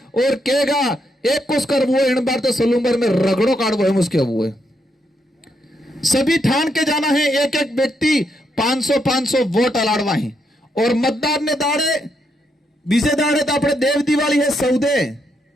और कहेगा एक कुछ कर वो इन बार तो सलूंबर में रगड़ो काटो है मुझके हुए। सभी ठान के जाना है, एक एक व्यक्ति 500 वोट अलाड़वा है, और मतदार ने दाड़े बीजे दाड़े तो अपने देव दिवाली है सौदे।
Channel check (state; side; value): normal; both; correlation 0.78